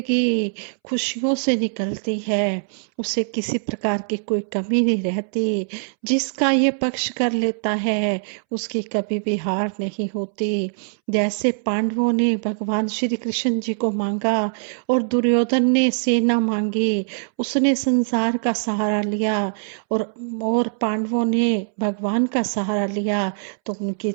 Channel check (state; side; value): silent; left; 64 dB below the other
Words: खुशियों से निकलती है, उसे किसी प्रकार की कोई कमी नहीं रहती। जिसका ये पक्ष कर लेता है, उसकी कभी भी हार नहीं होती। जैसे पांडवों ने भगवान श्री कृष्ण जी को मांगा और दुर्योधन ने सेना मांगी, उसने संसार का सहारा लिया और पांडवों ने भगवान का सहारा लिया तो उनकी